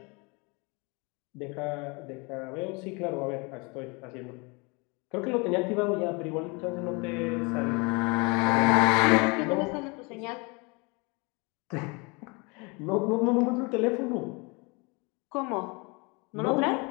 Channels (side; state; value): right; quieter; 29.1 dB